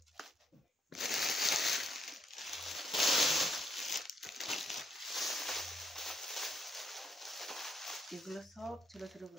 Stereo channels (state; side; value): normal; both; correlation 0.75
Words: এগুলো সব ছোট ছোট